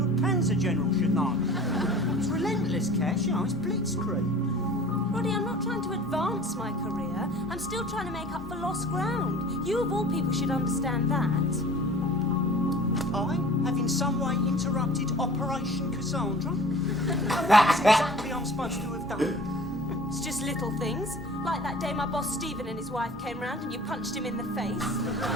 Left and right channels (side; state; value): both; normal; correlation 0.44